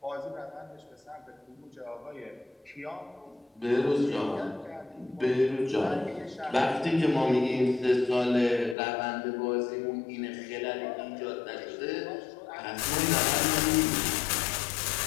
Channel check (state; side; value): drops out; right; at 8.8 s